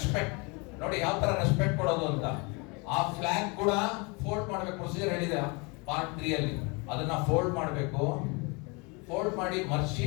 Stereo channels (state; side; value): quieter; right; 29.6 dB